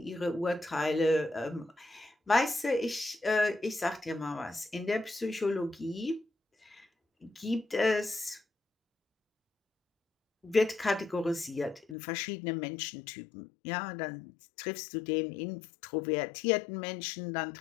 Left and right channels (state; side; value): drops out; right; at 12.0 s